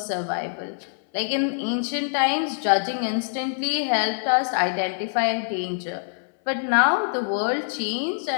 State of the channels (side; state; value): right; silent; 62 dB below the other